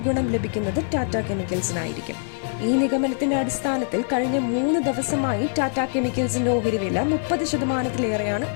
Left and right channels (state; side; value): silent; right; digital silence